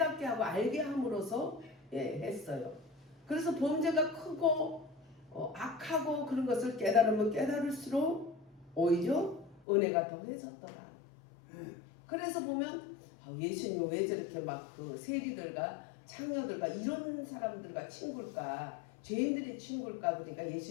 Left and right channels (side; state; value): right; drops out; at 9.6 s